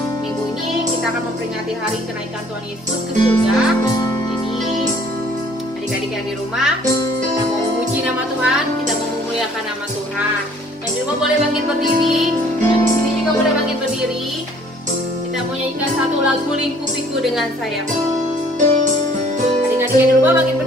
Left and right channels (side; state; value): both; normal; correlation 0.57